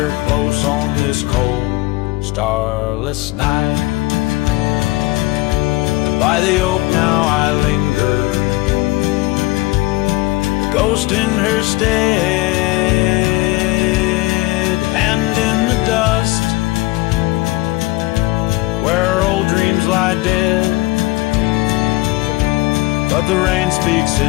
close on this cold, starless night? By the oak now I linger, ghost in her stead, and in the dust where old dreams lie dead. But the rain speaks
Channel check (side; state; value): right; quieter; 20.3 dB